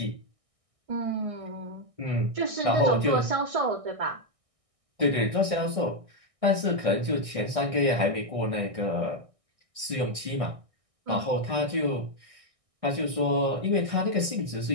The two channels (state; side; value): late; left; 1.6 ms